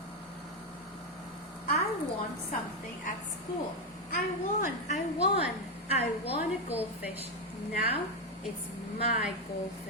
I won something at school. I won a goldfish. Now it's my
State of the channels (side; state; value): both; normal; correlation 0.06